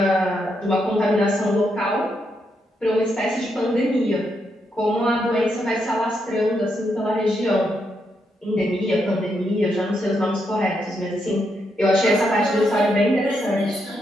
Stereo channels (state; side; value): normal; both; correlation 0.80